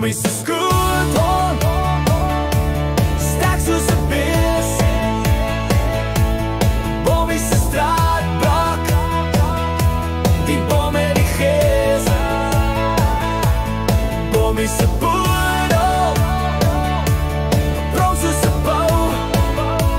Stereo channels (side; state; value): both; identical; correlation 1.00